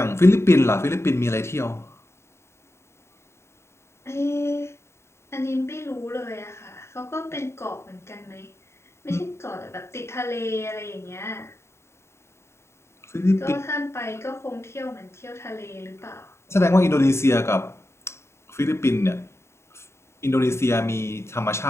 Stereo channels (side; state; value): right; late; 0.13 ms